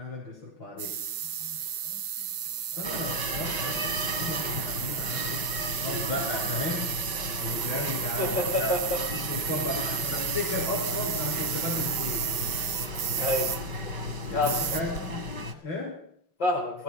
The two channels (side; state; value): right; late; 5.9 ms